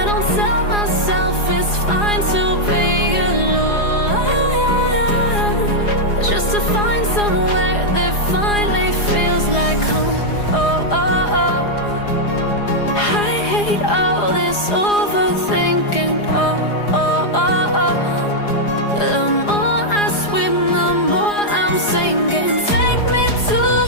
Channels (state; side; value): late; right; 4.9 ms